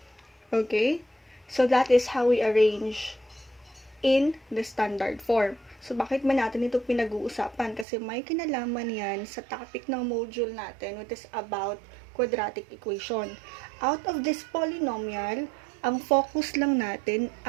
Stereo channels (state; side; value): drops out; left; at 7.9 s